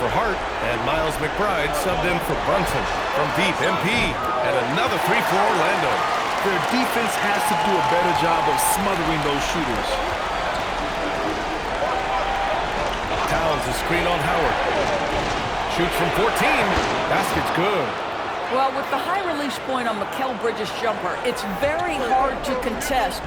Hart, and Miles McBride subbed in for Brunson. From deep, MP, and another three for Orlando. Their defense has to do a better job of smothering those shooters. Towns is screen on Howard. Shoots from 14. Basket's good. Well, with the high release point on Mikal Bridges' jumper, it's very hard to contest.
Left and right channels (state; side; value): identical; both; correlation 1.00